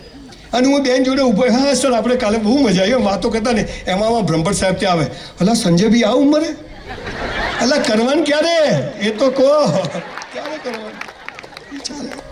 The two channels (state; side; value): identical; both; correlation 1.00